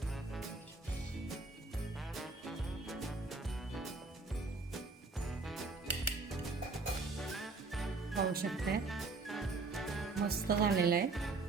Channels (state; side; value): quieter; left; 3.8 dB